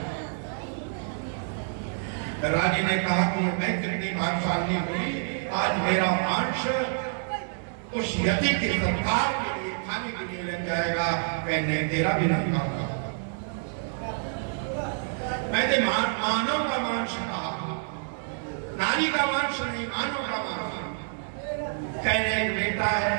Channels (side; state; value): left; silent; digital silence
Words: रानी ने कहा कि मैं कितनी भाग्यशाली हुई, आज मेरा मांस उस यति के सत्कार के लिए खाने के लिए लग जाएगा, मैं तेरा भी नहीं खाऊंगा। मैंने मानव का मांस कहा, नारी का मांस नहीं, मानव का मांस। कहने एक बेटा है,